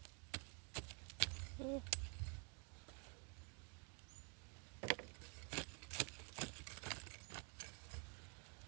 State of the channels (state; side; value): quieter; left; 37.7 dB